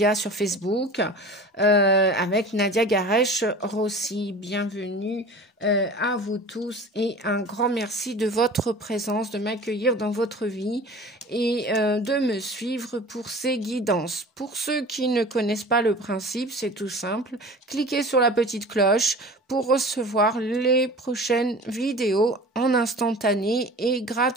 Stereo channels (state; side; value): normal; both; correlation 0.39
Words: sur Facebook, avec Nadia Garesh-Rossi. Bienvenue à vous tous et un grand merci de votre présence, de m'accueillir dans votre vie et de me suivre pour ces guidances. Pour ceux qui ne connaissent pas le principe, c'est tout simple. Cliquez sur la petite cloche pour recevoir les prochaines vidéos en instantané et